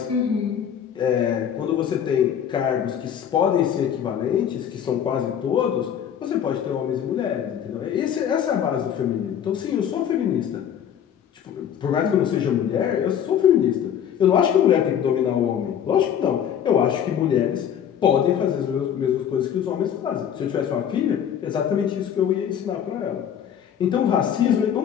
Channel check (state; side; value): quieter; right; 9.0 dB